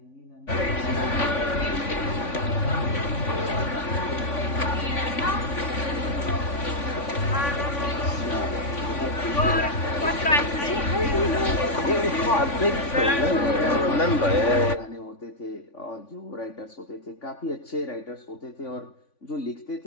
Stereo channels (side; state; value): right; late; 3.5 ms